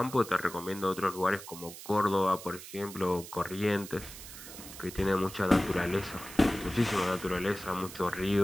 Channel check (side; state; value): right; noise; hiss, 13 dB below the sound